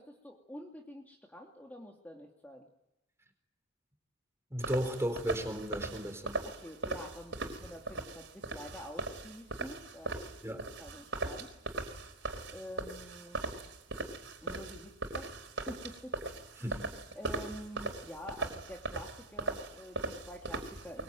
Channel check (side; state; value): both; normal; correlation 0.18